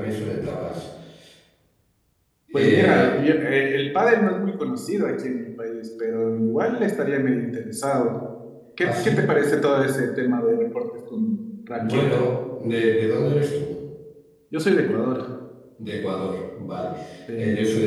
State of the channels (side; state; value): both; identical; correlation 1.00